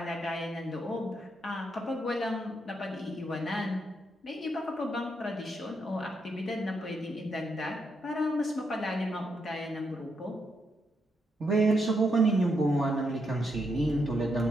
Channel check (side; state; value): both; normal; correlation 0.80